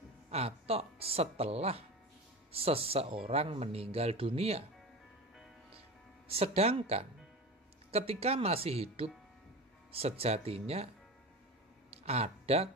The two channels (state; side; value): normal; both; correlation 0.29